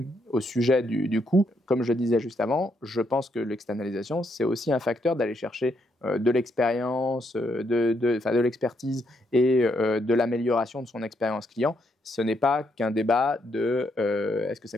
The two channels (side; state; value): both; normal; correlation 0.76